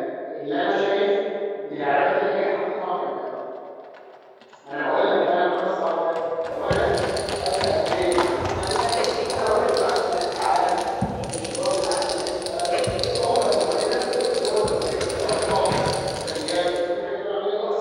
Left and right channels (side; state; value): both; identical; correlation 1.00